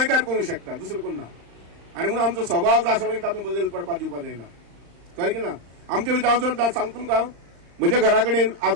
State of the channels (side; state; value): left; late; 35 ms